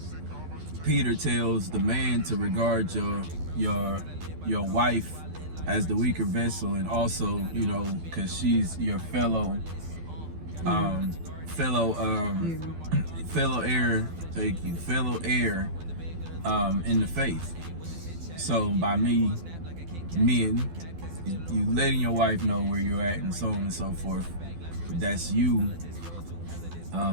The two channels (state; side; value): late; left; 12 ms